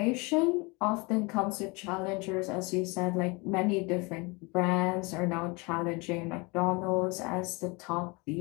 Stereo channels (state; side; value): quieter; right; 27.7 dB